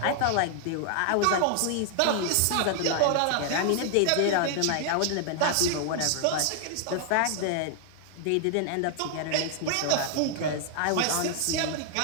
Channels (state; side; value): different; both; correlation 0.00